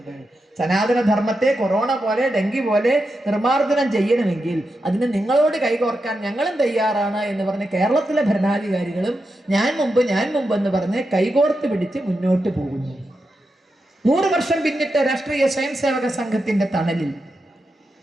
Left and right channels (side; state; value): both; normal; correlation 0.87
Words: സനാതന ധർമ്മത്തെ കൊറോണ പോലെ, ഡെങ്കി പോലെ നിർമാർജനം ചെയ്യണമെങ്കിൽ അതിന് നിങ്ങളോട് കൈകോർക്കാൻ ഞങ്ങളും തയ്യാറാണ് എന്ന് പറഞ്ഞ് കേരളത്തിലെ ഭരണാധികാരികളും ഞാൻ മുമ്പ് എന്ന് പറഞ്ഞ് കൈകോർത്ത് പിടിച്ച് മുന്നോട്ട് പോകുന്നു. 100 വർഷം പിന്നിട്ട രാഷ്ട്രീയ സ്വയംസേവക സംഘത്തിന്റെ തണലിൽ